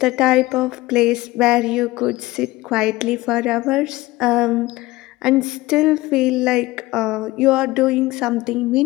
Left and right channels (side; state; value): right; quieter; 19.3 dB